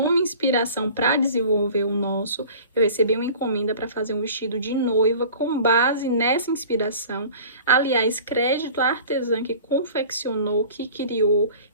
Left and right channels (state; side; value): inverted; both; correlation -0.43